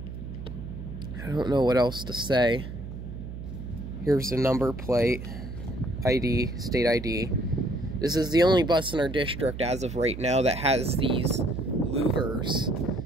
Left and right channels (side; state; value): right; noise; hum, 9 dB below the sound